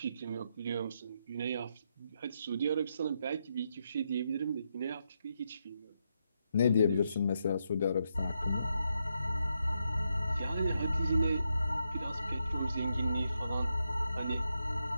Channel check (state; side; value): inverted; both; correlation -0.82